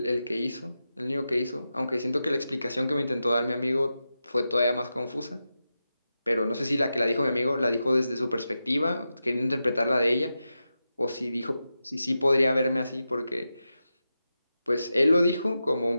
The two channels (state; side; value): inverted; both; correlation -0.90